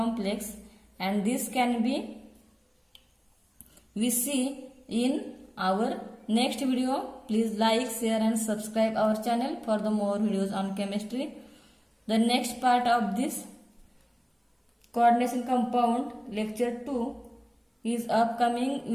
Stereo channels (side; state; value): both; identical; correlation 1.00